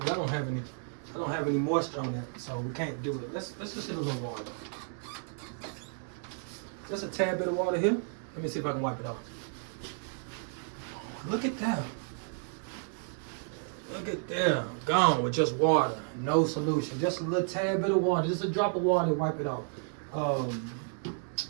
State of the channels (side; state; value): left; silent; 56 dB below the other